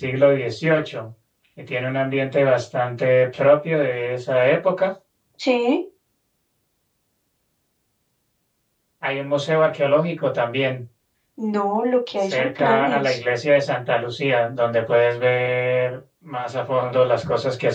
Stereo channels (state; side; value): identical; both; correlation 1.00